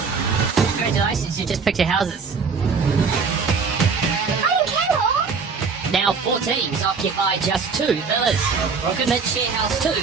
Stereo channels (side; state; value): left; quieter; 5.2 dB